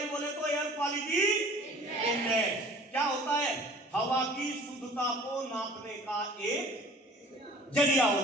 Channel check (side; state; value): both; normal; correlation 0.48